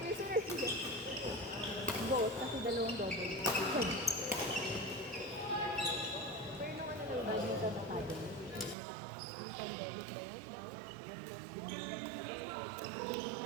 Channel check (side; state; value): left; drops out; at 8.8 s